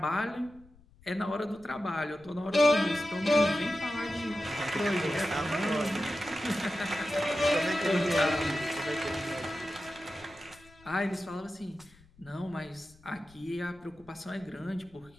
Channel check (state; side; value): noise; left; rumble, 26 dB below the sound